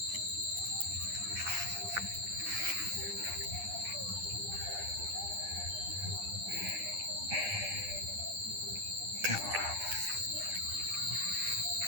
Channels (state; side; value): late; left; 10 ms